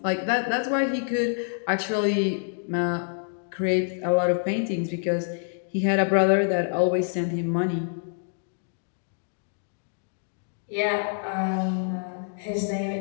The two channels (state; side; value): silent; right; digital silence